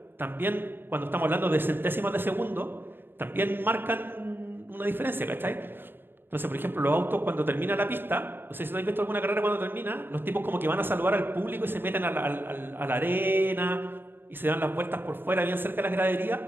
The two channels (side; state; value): left; late; 0.099 ms